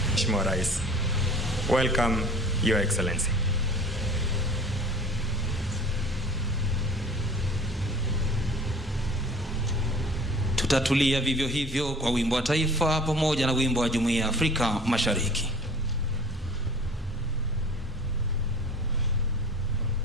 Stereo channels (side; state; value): both; normal; correlation 0.45